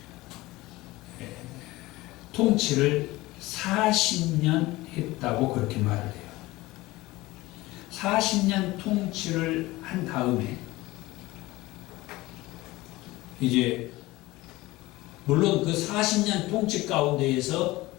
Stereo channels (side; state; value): right; quieter; 19.4 dB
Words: 통치를 40년 했다고 그렇게 말을 해요. 40년 통치를 한 다음에 이제 물론 그 40년 통치 가운데에서